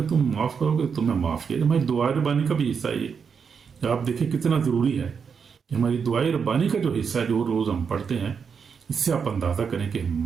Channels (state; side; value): quieter; left; 6.3 dB